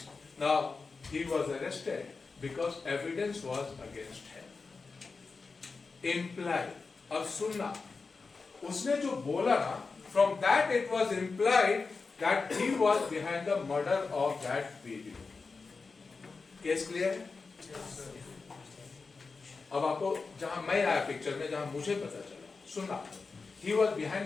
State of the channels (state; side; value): quieter; right; 4.4 dB